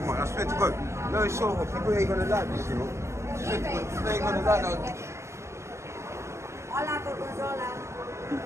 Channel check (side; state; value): left; late; 0.14 ms